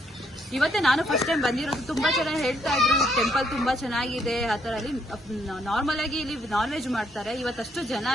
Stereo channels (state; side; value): normal; both; correlation 0.72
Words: ಇವತ್ತೇ ನಾನು ಫಸ್ಟ್ ಟೈಮ್ ಬಂದಿರೋದು. ತುಂಬಾ ಚೆನ್ನಾಗಿ ಹೇಳ್ತಾ ಇದ್ರು ಟೆಂಪಲ್ ತುಂಬಾ ಚೆನ್ನಾಗಿದೆ ಆ ತರ. ಅಲ್ಲಿ ನಾರ್ಮಲ್ ಆಗಿ ಇಲ್ಲಿ ನಾನ್ ವೆಜ್ ಮಾಡ್ತಾರೆ. ಇವತ್ತಷ್ಟು